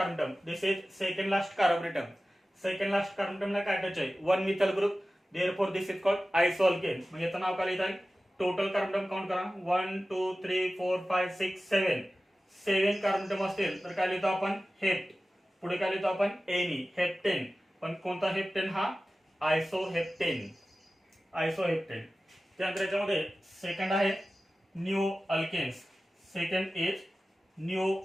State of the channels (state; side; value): normal; both; correlation 0.95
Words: term. This is second last carbon term. Second last carbon टर्मला काय अटॅच आहे, one methyl group. Therefore this is called iso alkane. म्हणजे याचं नाव काय लिहित आहे, टोटल कार्बन टर्म काउंट करा, 1 2 3 4 5 6 7. 7 कार्बन टर्म असतील तर काय लिहितो आपण, हेप्ट. पुढे काय लिहितो आपण, एनी, हेप्टेन. पण कोणता हेप्टेन, हा आयसो हेप्टेन. आयसो हेप्टेन. त्यानंतर याच्यामध्ये सेकंड आहे neo alkanes. Second is neo